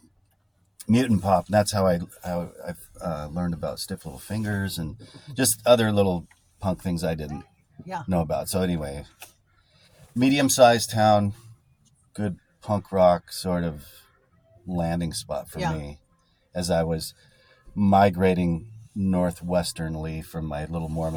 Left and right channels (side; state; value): both; identical; correlation 1.00